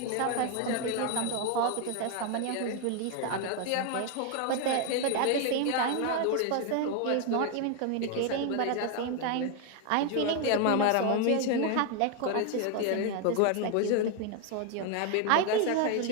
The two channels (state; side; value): different; both; correlation 0.01